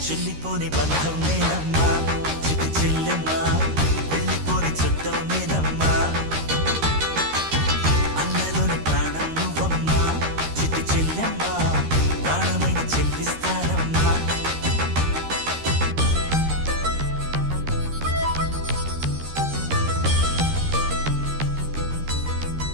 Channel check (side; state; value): left; late; 13 ms